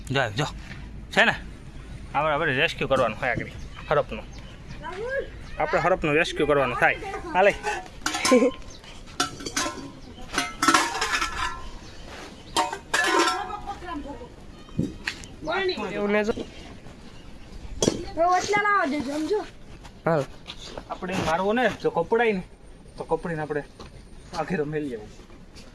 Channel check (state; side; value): identical; both; correlation 1.00